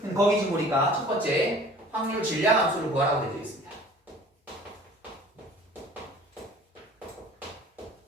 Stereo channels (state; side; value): normal; both; correlation 0.47